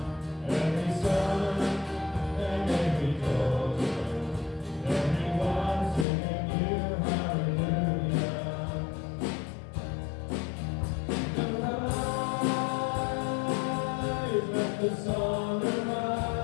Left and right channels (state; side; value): drops out; right; at 6.1 s